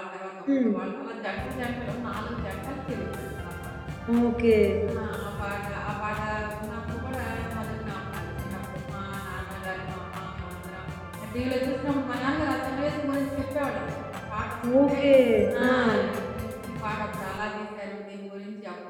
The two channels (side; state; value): both; identical; correlation 1.00